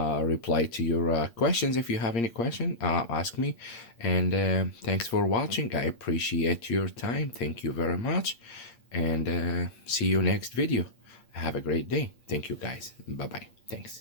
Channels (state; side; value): late; right; 8.6 ms